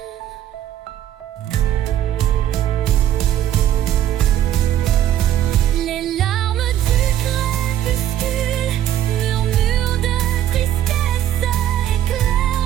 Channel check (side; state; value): left; quieter; 11.5 dB